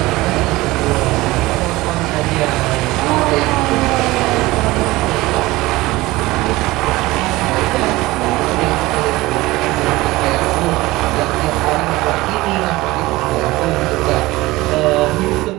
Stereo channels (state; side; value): quieter; left; 19.5 dB